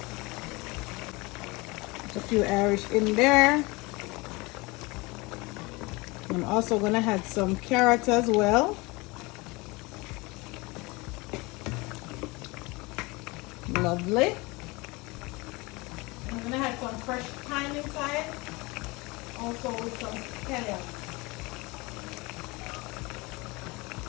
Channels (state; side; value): quieter; right; 24.7 dB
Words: A few Irish in there. I'm also gonna add some carrots as well. Lovely. I'm gonna add some fresh thyme inside, also with some scallions.